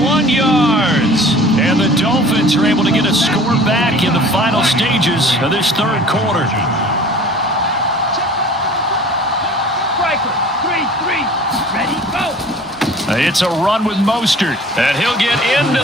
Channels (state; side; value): normal; both; correlation 0.46